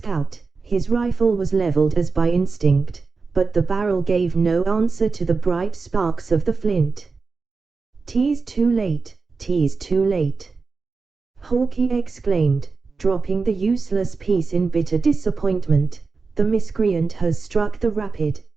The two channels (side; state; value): left; quieter; 4.4 dB